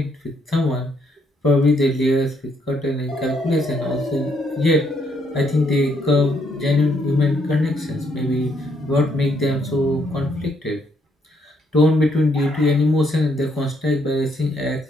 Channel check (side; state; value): both; normal; correlation 0.72